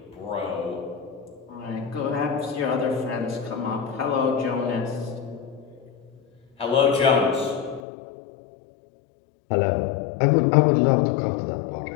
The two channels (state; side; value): drops out; right; at 7.8 s